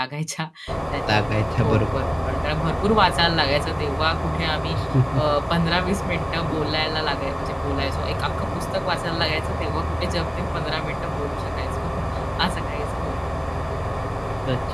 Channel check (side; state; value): both; identical; correlation 1.00